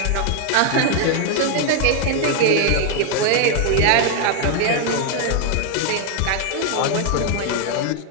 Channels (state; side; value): different; both; correlation 0.00